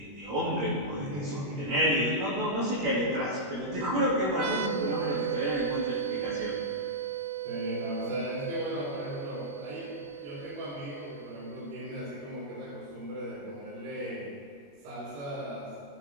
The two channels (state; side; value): late; left; 21 ms